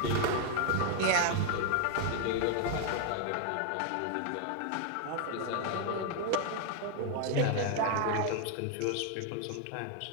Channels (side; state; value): both; different; correlation 0.01